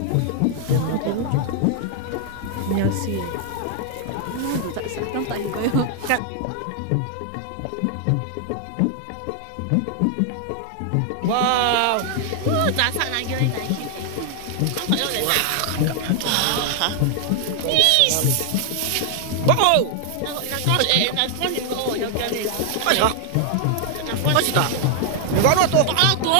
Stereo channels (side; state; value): both; different; correlation 0.00